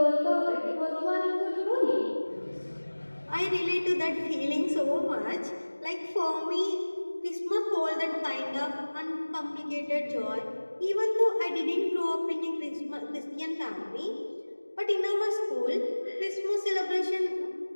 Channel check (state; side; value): inverted; both; correlation -1.00